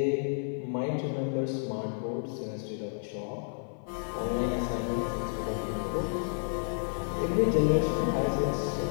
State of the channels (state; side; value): silent; right; 55 dB below the other